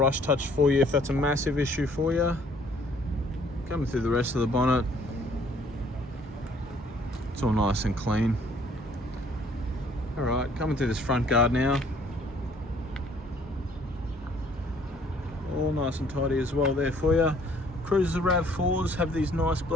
touch for you if that's a massive issue for you. Coming through the rest of the bonnet, it's all nice and clean. Alright, coming through this front guard now. All nice and tidy as well there for you. Cruiser RAV4s have these nice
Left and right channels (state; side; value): normal; both; correlation 0.60